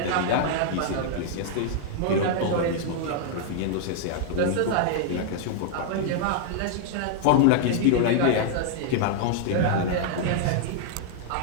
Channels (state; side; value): different; both; correlation -0.01